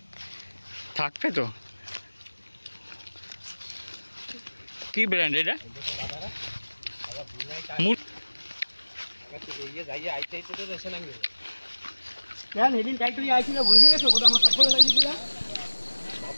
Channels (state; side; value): inverted; both; correlation -1.00